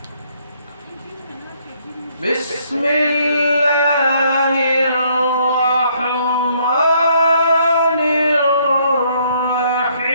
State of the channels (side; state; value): both; inverted; correlation -0.67